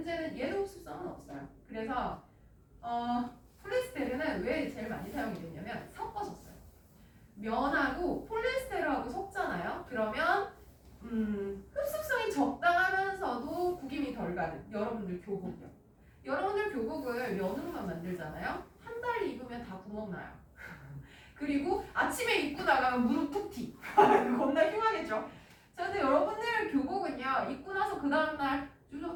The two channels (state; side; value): identical; both; correlation 1.00